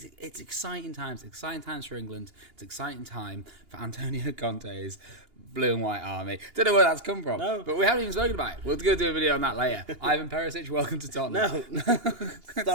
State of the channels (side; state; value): left; late; 2.8 ms